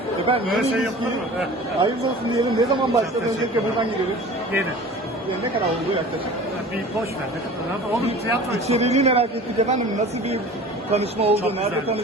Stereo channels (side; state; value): both; normal; correlation 0.41